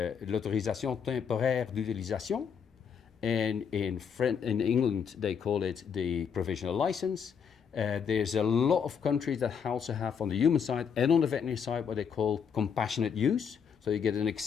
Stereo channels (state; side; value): quieter; right; 7.0 dB